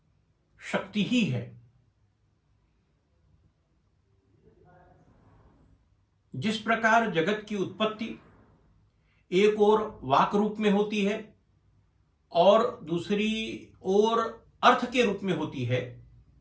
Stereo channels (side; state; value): both; identical; correlation 1.00